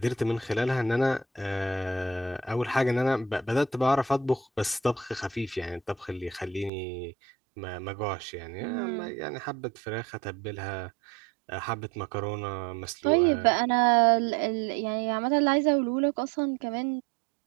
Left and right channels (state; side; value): drops out; left; at 6.7 s